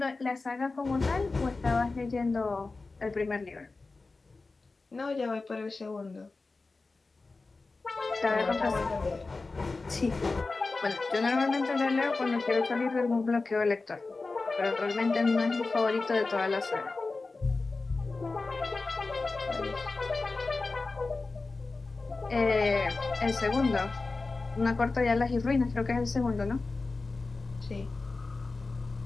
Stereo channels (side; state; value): right; quieter; 3.7 dB